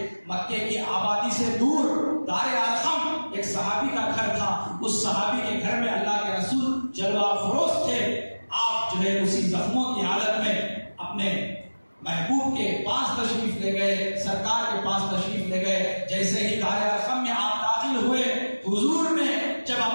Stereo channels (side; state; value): both; inverted; correlation -1.00